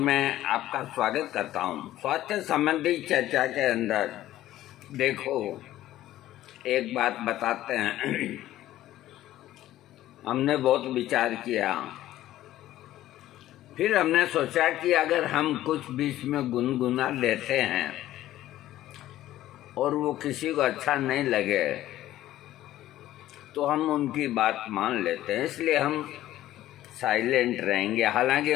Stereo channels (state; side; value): quieter; right; 14.1 dB